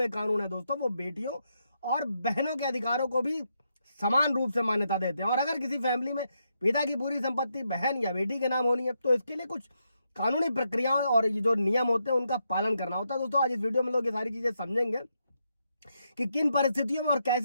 कानून है दोस्तों, वो बेटियों और बहनों के अधिकारों को भी समान रूप से मान्यता देते हैं। और अगर किसी फैमिली में पिता की पूरी संपत्ति बहन या बेटी के नाम होनी है तो इसके लिए कुछ कानूनी प्रक्रियाएं और ये जो नियम होते हैं उनका पालन करना होता है। दोस्तों, आज इस वीडियो में लोग ये सारी चीजें समझेंगे कि किन परिस्थितियों में और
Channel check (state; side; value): inverted; both; correlation -0.81